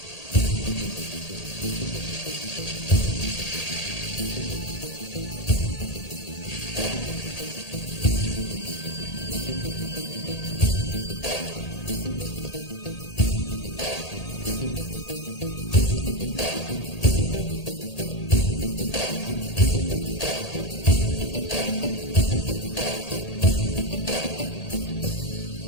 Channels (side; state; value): right; late; 1.8 ms